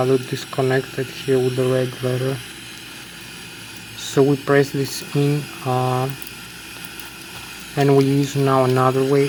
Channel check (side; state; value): both; identical; correlation 1.00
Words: disconnected here with the red letter. So we press this in and we use now another way